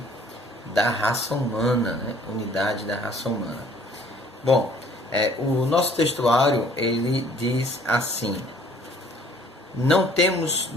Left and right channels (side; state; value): both; normal; correlation 0.57